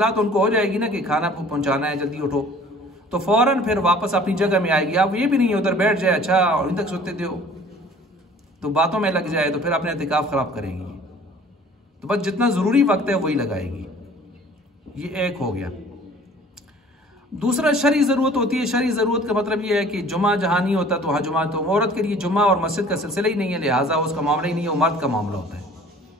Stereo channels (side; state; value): both; normal; correlation 0.50